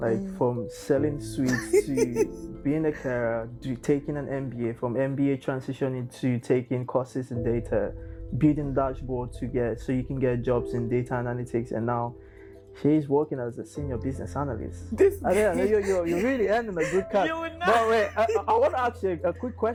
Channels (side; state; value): both; identical; correlation 1.00